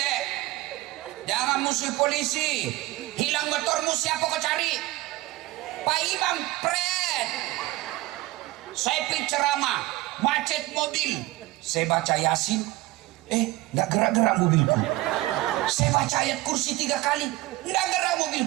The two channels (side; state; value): left; quieter; 18.6 dB